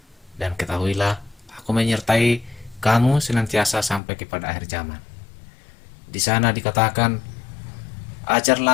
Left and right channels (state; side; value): drops out; right; at 4.0 s